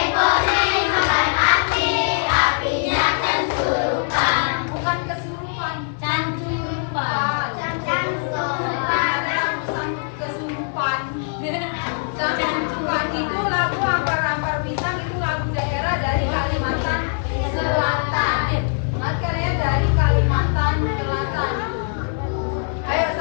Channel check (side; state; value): right; silent; 64 dB below the other